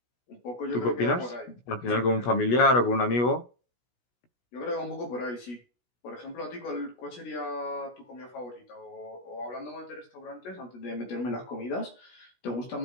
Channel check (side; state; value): right; late; 16 ms